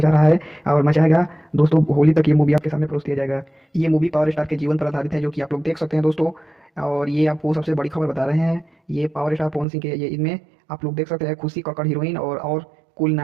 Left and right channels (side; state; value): left; drops out; at 9.7 s